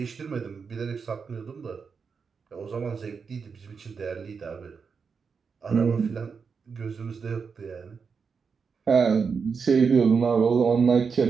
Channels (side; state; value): left; quieter; 5.6 dB